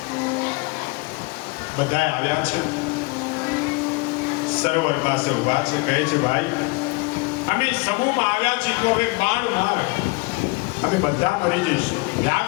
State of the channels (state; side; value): quieter; right; 26.3 dB